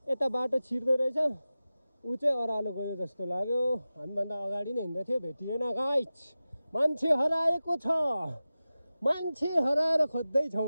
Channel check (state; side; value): inverted; both; correlation -0.95